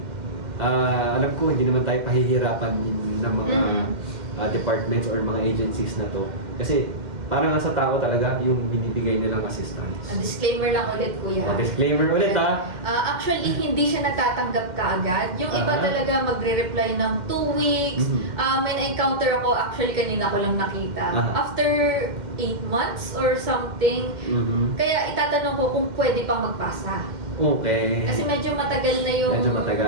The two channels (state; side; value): late; left; 2.1 ms